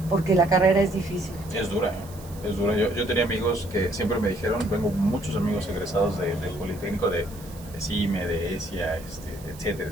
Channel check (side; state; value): right; noise; hiss, 20 dB below the sound